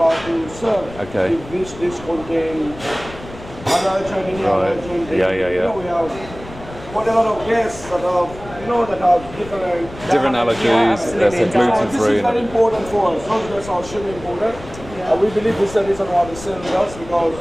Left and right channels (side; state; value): left; noise; rumble, 16 dB below the sound